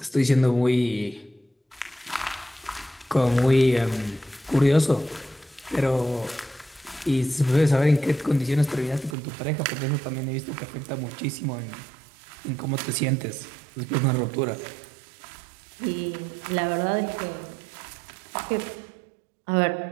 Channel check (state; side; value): drops out; left; at 9.2 s